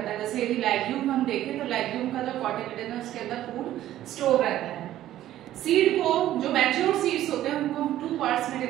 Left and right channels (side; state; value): left; quieter; 13.2 dB